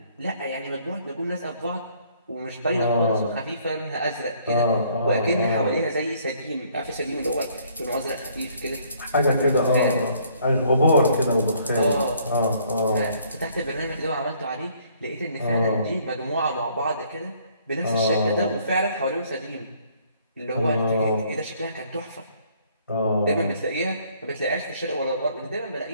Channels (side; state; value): both; inverted; correlation -0.63